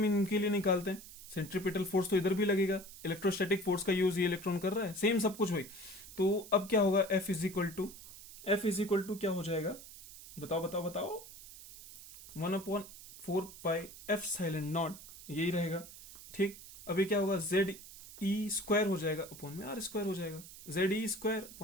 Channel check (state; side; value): noise; right; hiss, 15 dB below the sound